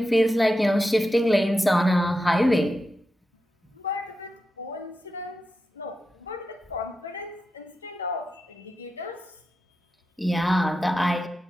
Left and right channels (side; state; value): both; normal; correlation 0.89